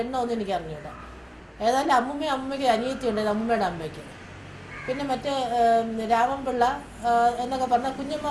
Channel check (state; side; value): identical; both; correlation 1.00